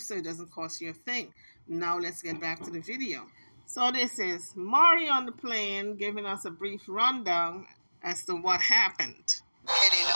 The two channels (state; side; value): inverted; both; correlation -1.00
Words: It doesn't cost you a thing. Now let's get back to the video. So this is Mari on the plane giving us a brief rundown as to what happened. Getting